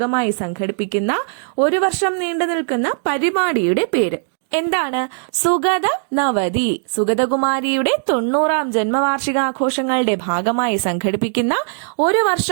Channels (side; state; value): left; silent; digital silence